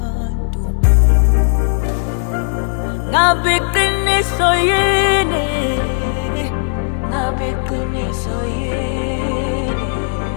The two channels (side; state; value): right; silent; 62 dB below the other